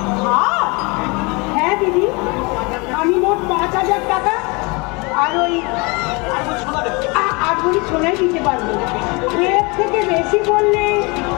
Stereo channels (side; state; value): right; quieter; 28.1 dB